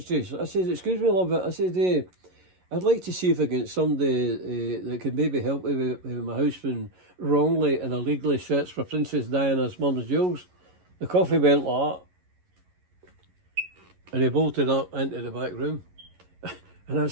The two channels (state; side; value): late; left; 11 ms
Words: I says, excuse me, love, I said, I'd like to see if I get somebody that could maybe help me with my house being wrongly and illegally searched for Princess Diana's mum's jewels. The coffee went like that. And he bolted up into the back room. And I